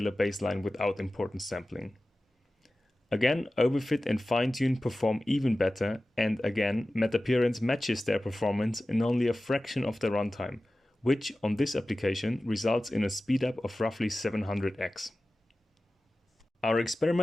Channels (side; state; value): both; normal; correlation 0.96